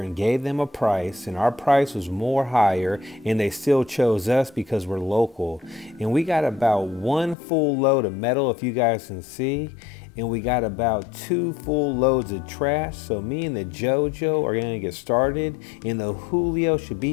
and gave them a price, and our price was more higher, and they still chose us because we're local. And we got about 1 full load of metal, if you guys can see, and we got about 2 full loads of trash. So me and the JoJo are gonna get started, and the Julio should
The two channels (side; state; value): right; drops out; at 7.4 s